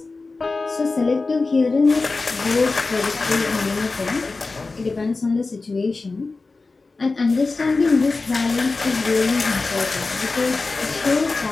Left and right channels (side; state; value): right; quieter; 3.8 dB